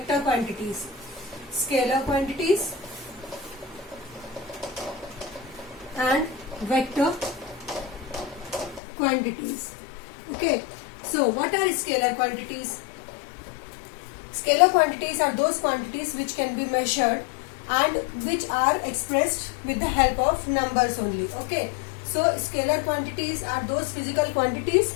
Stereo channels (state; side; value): drops out; right; at 8.8 s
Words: quantities. Scalar quantities and vector quantities. Okay, so what are scalar quantities? Scalar quantities are those quantities which can be measured and which are expressed with the help of numbers only. Okay, so scalar quantities are those physical quantities